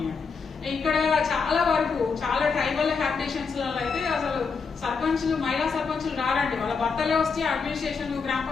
ఇక్కడ చాలా వరకు చాలా ట్రైబల్ హ్యాబిటేషన్స్ లలో అయితే అసలు సర్పంచులు మహిళా సర్పంచులు రారండి, వాళ్ళ భర్తలే వస్తే అడ్మినిస్ట్రేషన్ గ్రామ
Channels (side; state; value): right; quieter; 5.2 dB